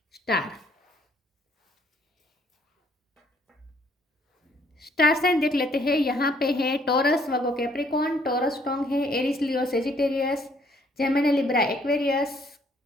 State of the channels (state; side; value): normal; both; correlation 0.65